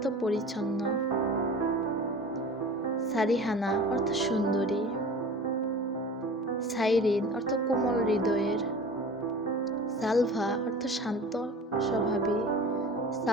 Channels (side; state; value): both; normal; correlation 0.39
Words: পরিচ্ছন্ন। সারিহানা অর্থ সুন্দরী। সাইরিন অর্থ কোমল হৃদয়ের। সালভা অর্থ শান্ত স্বভাবী।